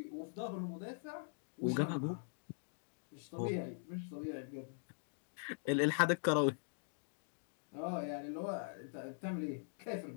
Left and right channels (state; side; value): silent; right; digital silence